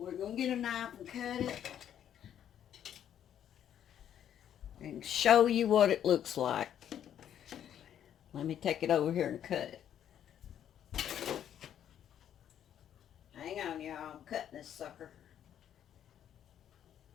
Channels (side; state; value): right; quieter; 10.0 dB